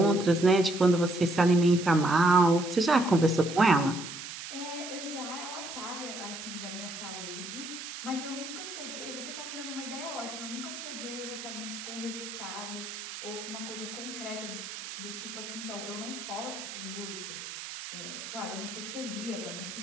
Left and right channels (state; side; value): noise; right; hiss, 9 dB below the sound